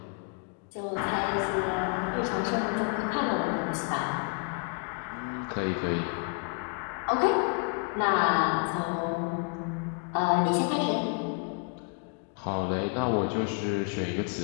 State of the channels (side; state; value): right; quieter; 38.4 dB